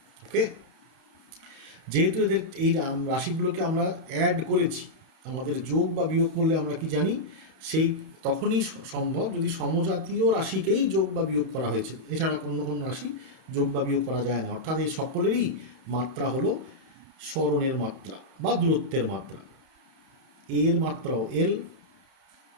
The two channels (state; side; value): late; left; 31 ms